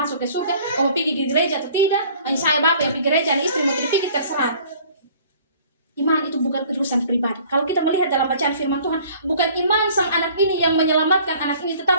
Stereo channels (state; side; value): inverted; both; correlation -0.52